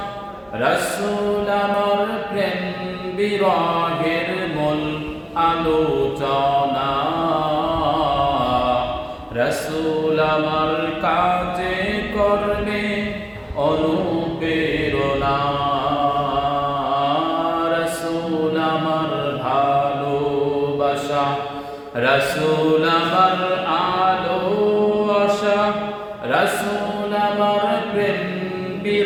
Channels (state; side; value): identical; both; correlation 1.00